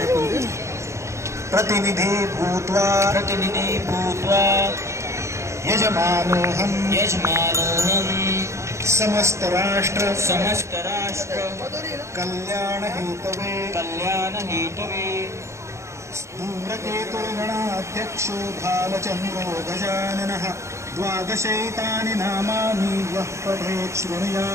प्रतिनिधि भूत्वा यजमानोऽहं समस्त राष्ट्र कल्याण हेतवे धूम्रकेतुर्गणाध्यक्षो भालचन्द्रो गजाननः द्वादशैतानि नामानि यः पठेत्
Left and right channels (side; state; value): left; late; 0.14 ms